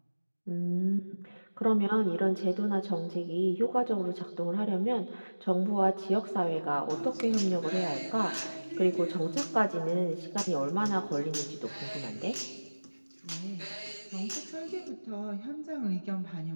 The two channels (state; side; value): inverted; both; correlation -1.00